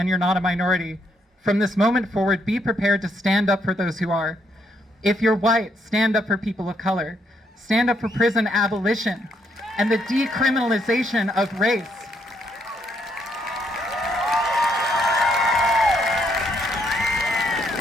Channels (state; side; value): normal; both; correlation 0.74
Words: you're not a minority, from this moment forward, be prepared to stand up for those who are. If you're white, stand up for people of color. Stand up for prison abolition and the decriminalization of race.